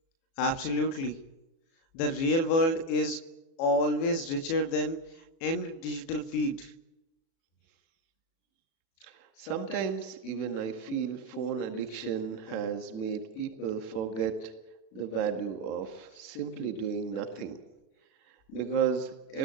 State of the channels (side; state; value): right; late; 36 ms